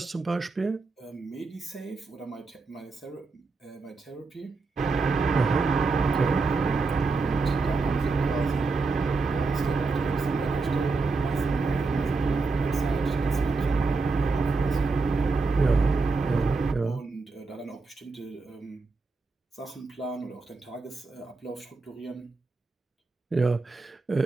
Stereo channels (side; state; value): left; quieter; 4.0 dB